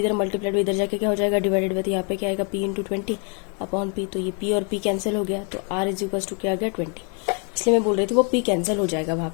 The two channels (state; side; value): quieter; right; 37.4 dB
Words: मल्टीप्लाइड इधर जाके क्या हो जाएगा, डिवाइडेड में. तो यहाँ पे क्या आएगा, p इंटू 20 अपॉन p. तो ये p और p कैंसिल हो गया. तो r इज इक्वल्स टू क्या आ गया, 20. इसलिए मैं बोल रही थी वो p कैंसिल हो जाएगा वहाँ